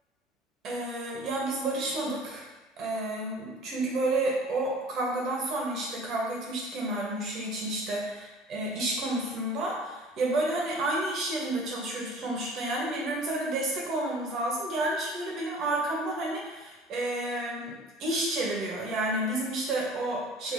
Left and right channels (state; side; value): normal; both; correlation 0.46